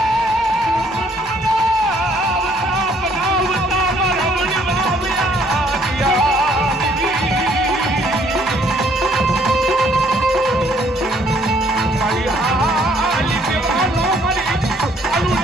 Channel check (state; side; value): normal; both; correlation 0.64